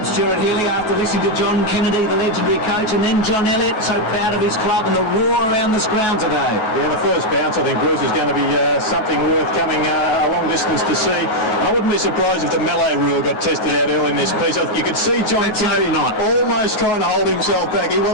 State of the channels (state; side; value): late; right; 9.3 ms